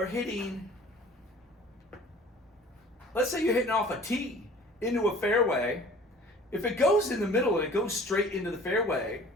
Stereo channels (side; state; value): both; normal; correlation 0.48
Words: hitting, let's say you're hitting off a tee into a fairway, if it goes in the middle and it goes straight into the fairway,